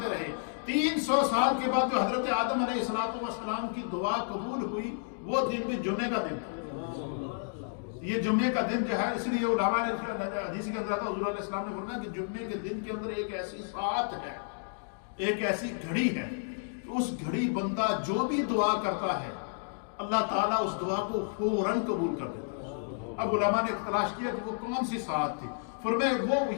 رہے۔ 300 سال کے بعد جو حضرت آدم علیہ السلام کی دعا قبول ہوئی وہ دن بھی جمعے کا دن تھا۔ یہ جمعے کا دن جو ہے، اس لیے علماء نے حدیث کے اندر آتا، حضور علیہ السلام نے فرمایا کہ جمعے کے دن کے اندر ایک ایسی ساعت ہے، ایک ایسی گھڑی ہے، اس گھڑی بندہ جو بھی دعا کرتا ہے اللہ تعالیٰ اس دعا کو فوراً قبول کر دیتا ہے۔ اب علماء نے تلاش کیا کہ وہ کون سی ساعت تھی،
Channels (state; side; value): silent; right; digital silence